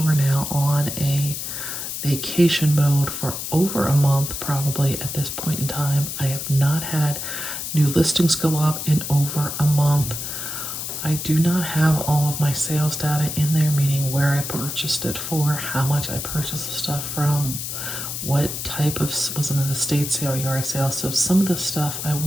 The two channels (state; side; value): noise; left; hiss, 5 dB below the sound